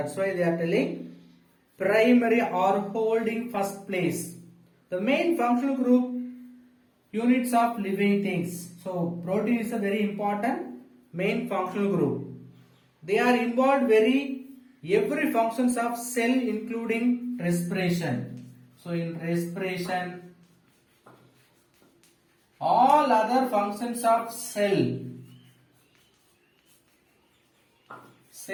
why they are telling primary or holding first place. The main functional group units of living things. So protein is a very important main functional group. They are involved every functions of cell including respiration. So in respiration, all other functions of cell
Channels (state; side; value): identical; both; correlation 1.00